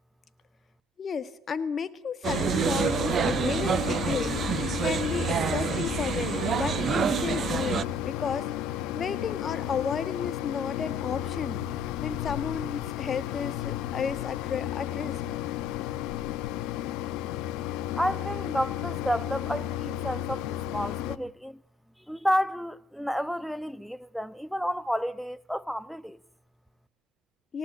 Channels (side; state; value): both; normal; correlation 0.62